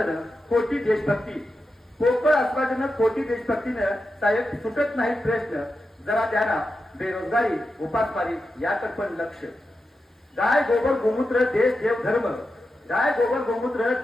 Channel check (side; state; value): both; normal; correlation 0.89